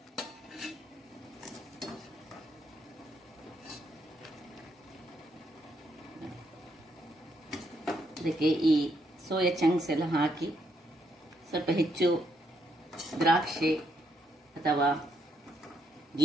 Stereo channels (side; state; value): both; normal; correlation 0.75